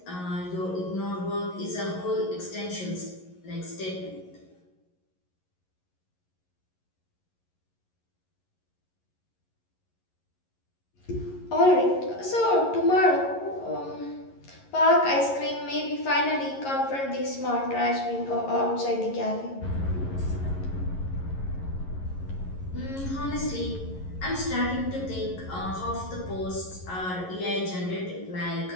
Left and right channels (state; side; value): late; right; 11 ms